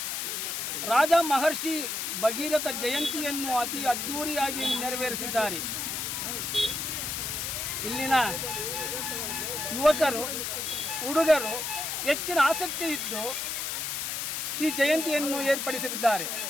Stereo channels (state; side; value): noise; left; hiss, 2 dB below the sound